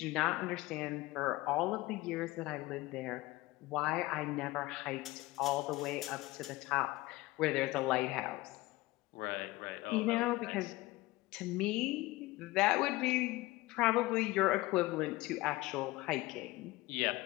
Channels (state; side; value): quieter; right; 19.7 dB